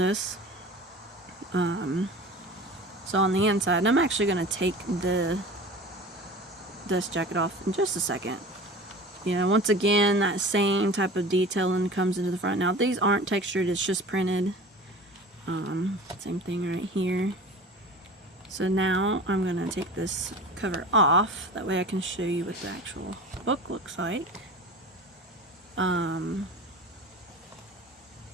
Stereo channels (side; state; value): both; normal; correlation 0.37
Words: So on the inside, and I'm actually going to take this jacket off in just a second. Once again, that same type of detailing comes into the front. Now, these aren't textured, it's just printed. Same thing right here. So now I'm going to take this cover off. That way I can show you what the actual book looks like.